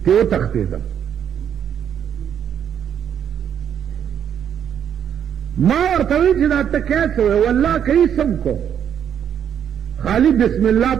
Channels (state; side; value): quieter; left; 8.9 dB